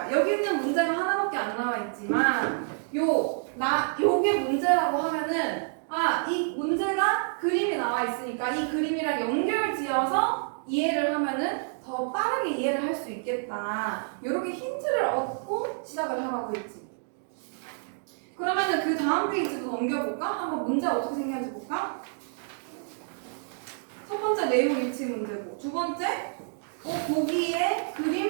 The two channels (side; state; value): left; silent; digital silence